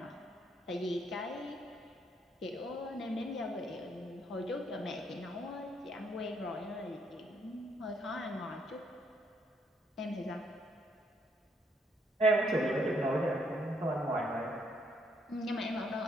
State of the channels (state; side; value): normal; both; correlation 0.71